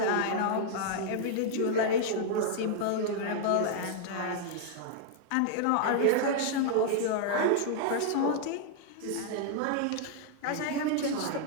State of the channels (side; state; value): both; different; correlation -0.01